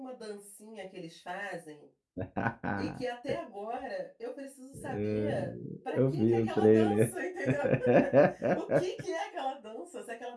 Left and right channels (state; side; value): identical; both; correlation 1.00